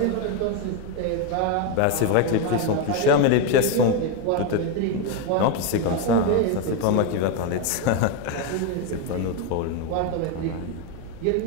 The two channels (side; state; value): both; different; correlation 0.02